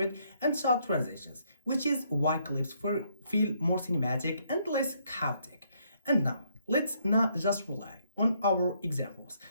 and shot transitions, which is why clips feel more cinematic and less chaotic. And now, let's not just rely on our examples.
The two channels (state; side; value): inverted; both; correlation -0.71